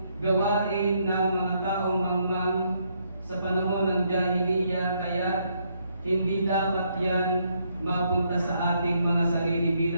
gawain ng mga taong mangmang sa panahon ng Jahiliya, kaya hindi dapat yan mapunta sa ating mga sarili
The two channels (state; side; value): inverted; both; correlation -0.74